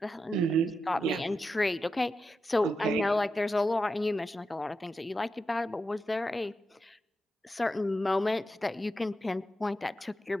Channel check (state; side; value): normal; both; correlation 0.88